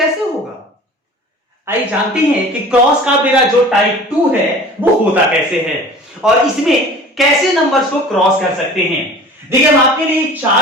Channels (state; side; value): normal; both; correlation 0.43